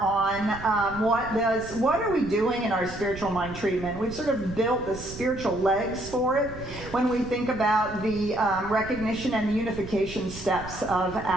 what are we doing in our spiritual mind treatment. We've sort of built the spiritual legs for it when we think about the recognition and the unification steps of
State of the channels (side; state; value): right; noise; rumble, 14 dB below the sound